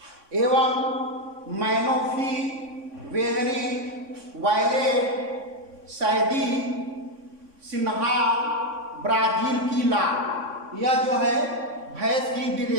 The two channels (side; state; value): left; late; 3.6 ms